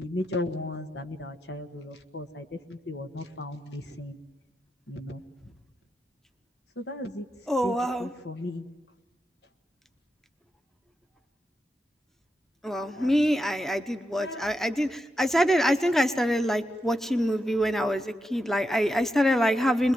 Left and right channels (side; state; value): both; normal; correlation 0.86